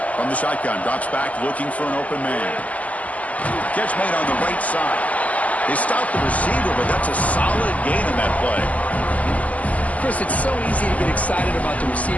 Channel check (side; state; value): right; late; 0.069 ms